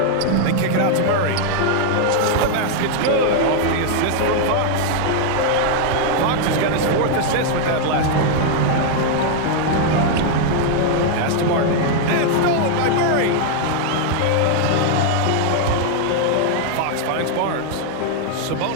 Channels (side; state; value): both; different; correlation 0.00